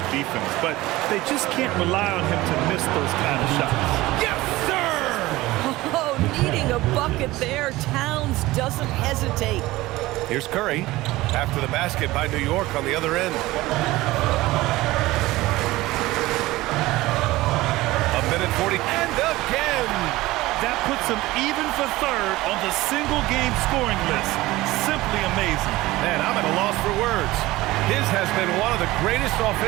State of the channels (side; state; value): left; quieter; 18.5 dB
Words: defense, but they just can't rely on him to miss those kind of shots. Yes, sir! Oh, needing a bucket there. Towns doesn't hesitate. Here's Curry after the basket by New York on the other end. A minute 40, and again! That puts him even for third on the single-game scoring list. Simply amazing. Man, I'm at a loss for words. His has been one of the greatest